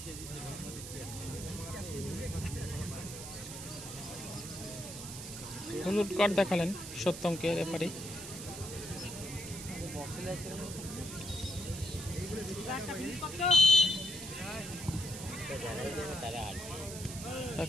হলুদ কার্ড দেখালেন সত্যমকে রেফারি।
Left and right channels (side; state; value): right; noise; hiss, 9 dB below the sound